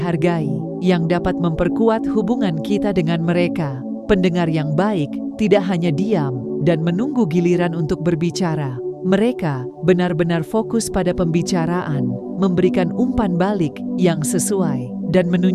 yang dapat memperkuat hubungan kita dengan mereka. Pendengar yang baik tidak hanya diam dan menunggu giliran untuk berbicara. Mereka benar-benar fokus pada pembicaraan, memberikan umpan balik yang sesuai, dan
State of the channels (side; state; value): both; identical; correlation 1.00